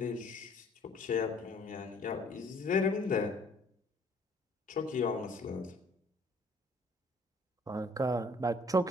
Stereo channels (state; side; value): normal; both; correlation 0.58